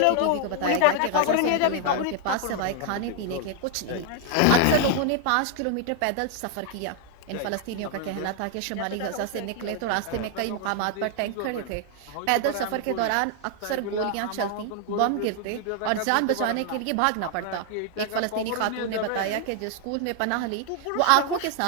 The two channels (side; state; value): both; different; correlation 0.00